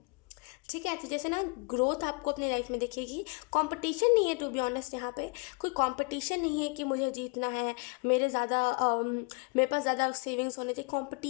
ठीक है। तो जैसे ना ग्रोथ आपको अपनी लाइफ में दिखेगी। कंपटीशन नहीं है टू बी ऑनेस्ट, यहाँ पे कोई कंपटीशन नहीं है कि मुझे जीतना है, मेरे पास ज़्यादा सेविंग्स होने चाहिए।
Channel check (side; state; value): right; quieter; 32.3 dB